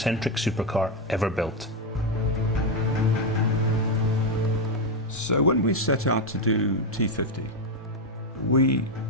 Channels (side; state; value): both; normal; correlation 0.06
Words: supercar ever built. So when we set out to do T50, we